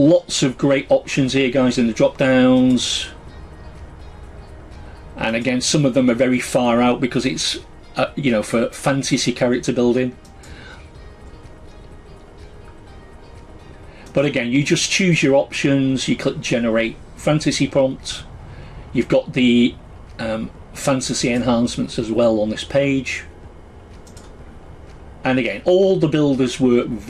of great options here, guys, in the drop downs, and again some of them are very far out because it's for fantasy character building. But again, you just choose your options, you click generate fantasy prompt, you've got the fantasy enhancements as well on this page, and again all the builders work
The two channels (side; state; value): both; identical; correlation 1.00